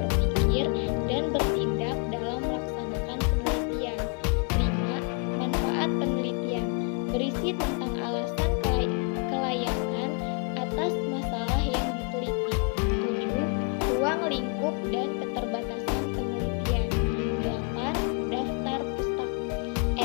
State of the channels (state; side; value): quieter; right; 36.2 dB